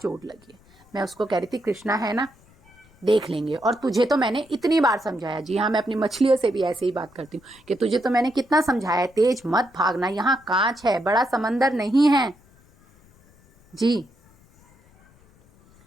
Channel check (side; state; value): left; noise; rumble, 29 dB below the sound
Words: लगी है। मैं उसको कह रही थी कृष्णा है ना, देख लेंगे। और तुझे तो मैंने इतनी बार समझाया, जी हाँ मैं अपनी मछलियों से भी ऐसे ही बात करती हूँ कि तुझे तो मैंने कितना समझाया, तेज मत भागना, यहाँ कांच है, बड़ा समंदर नहीं है जी।